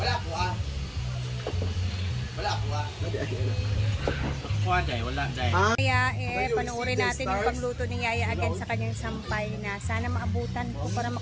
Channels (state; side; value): identical; both; correlation 1.00